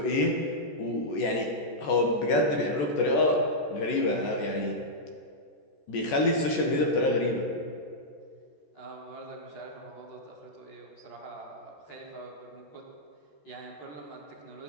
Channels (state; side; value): late; right; 14 ms